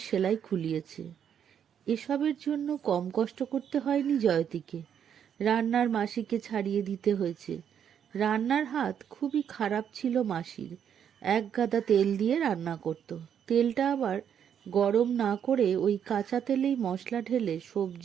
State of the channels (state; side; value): quieter; left; 8.6 dB